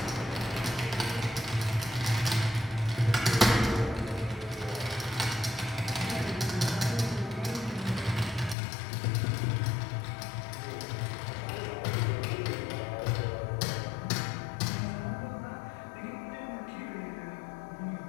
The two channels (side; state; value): right; drops out; at 8.6 s